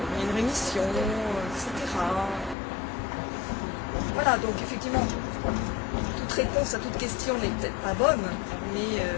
il y a une rémission, etc. Voilà, donc effectivement, toute réponse à toute question n'est peut-être pas bonne, mais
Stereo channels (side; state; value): right; drops out; at 2.6 s